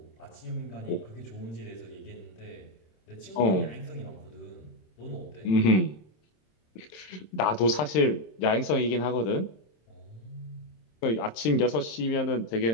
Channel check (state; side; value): late; right; 26 ms